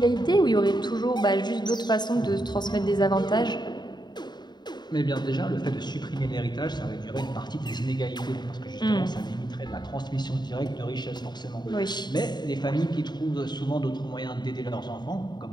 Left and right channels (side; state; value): right; late; 0.21 ms